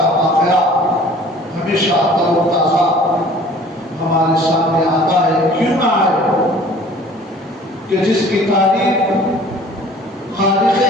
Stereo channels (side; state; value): both; normal; correlation 0.49